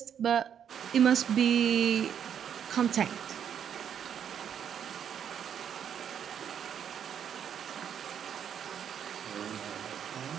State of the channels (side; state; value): left; quieter; 8.6 dB